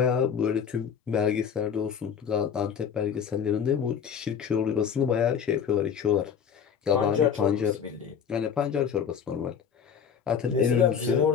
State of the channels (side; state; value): right; quieter; 7.3 dB